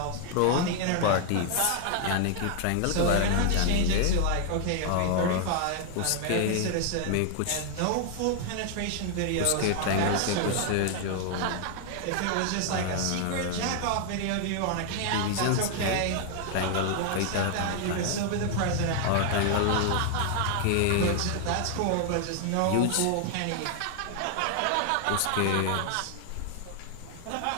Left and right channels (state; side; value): different; both; correlation 0.00